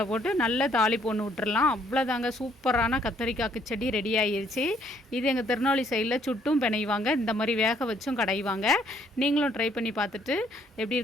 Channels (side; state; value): both; normal; correlation 0.66